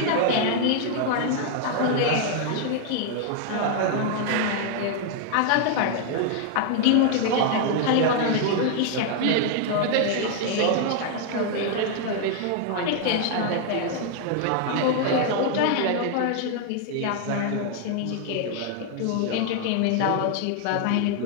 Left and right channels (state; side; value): different; both; correlation 0.00